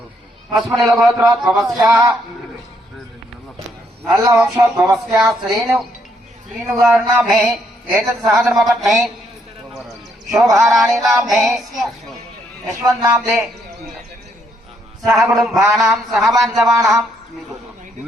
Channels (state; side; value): normal; both; correlation 0.73